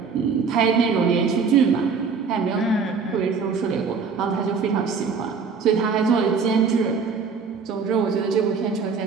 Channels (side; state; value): left; quieter; 5.4 dB